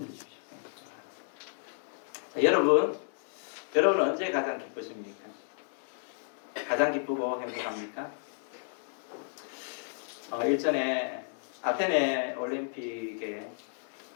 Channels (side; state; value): right; silent; digital silence